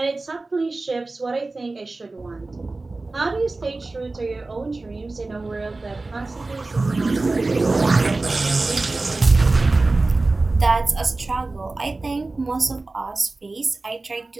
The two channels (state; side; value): quieter; left; 3.3 dB